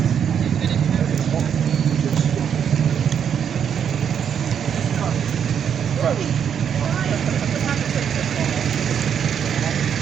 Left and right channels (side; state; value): left; quieter; 8.1 dB